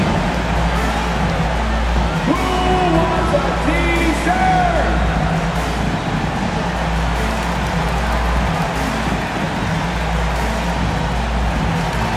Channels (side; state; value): both; identical; correlation 1.00